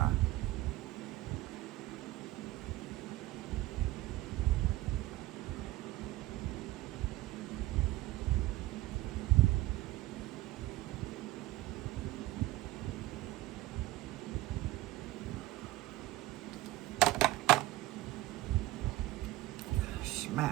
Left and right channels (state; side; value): quieter; left; 16.8 dB